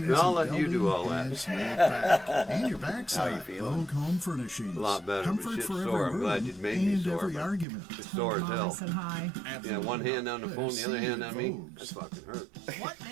Yeah, I'll and let you do all Building that. is laid back. And your backside, How you feeling? Vogue Home Furnishings. A lot better, but Comfort shit's for sore. every I'm glad room you made me and sore, every but argument. It's sore as Mom, I hell. said hi. Yeah, one hand on the phone, the other hand on me. Vogues. That fucking hurt. What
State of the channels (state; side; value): drops out; left; at 7.7 s